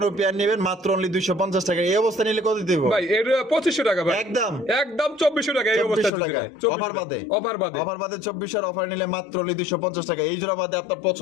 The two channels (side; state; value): right; drops out; at 6.1 s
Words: পেয়ার নেবেন মাত্র অনলি 250 টাকা। এই অবস্থা নিলে কত দিতে হইব ভাই এর 2500 টাকা ভাই। একদম একদম 2400 টাকা এই অবস্থা 2400 টাকা অফার বাদে? অফার বাদে। অফার বাদে 2400 অফার নিলে মাত্র অনলি 250 টাকা। এই জোড়া বাদে আপনার